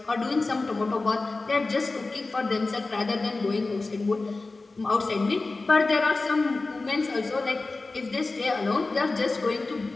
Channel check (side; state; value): right; quieter; 3.5 dB